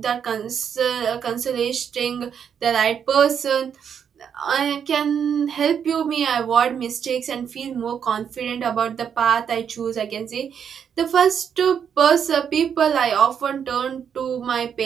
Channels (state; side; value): quieter; left; 7.8 dB